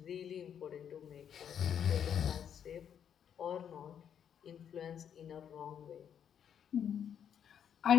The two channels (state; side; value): quieter; right; 8.6 dB